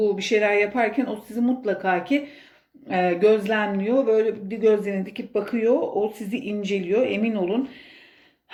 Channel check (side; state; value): both; identical; correlation 1.00